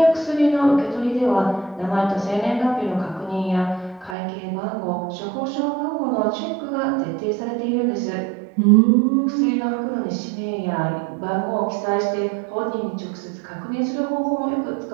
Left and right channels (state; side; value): drops out; left; at 4.2 s